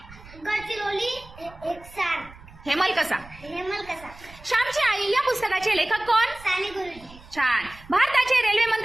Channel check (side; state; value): right; noise; rumble, 20 dB below the sound